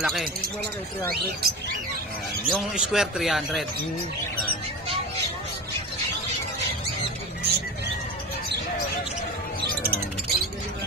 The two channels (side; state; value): both; normal; correlation 0.26